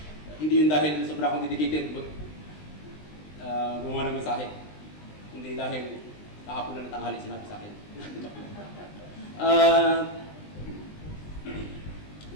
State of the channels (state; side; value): late; right; 20 ms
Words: Hindi yun dahil sobra akong dedicated, but gumawa ng mensahe. Hindi dahil kahapon na ng tanghali sinabi sa akin.